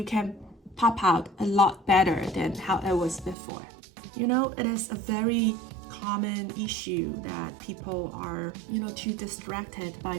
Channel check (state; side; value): drops out; left; at 3.4 s